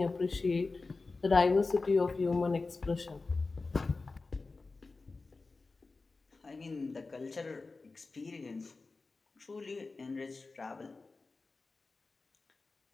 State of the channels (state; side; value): quieter; right; 3.8 dB